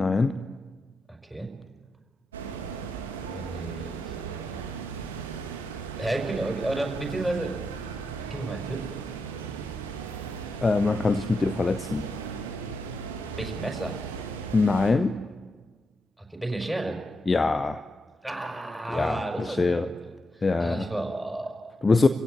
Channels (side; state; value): both; normal; correlation 0.85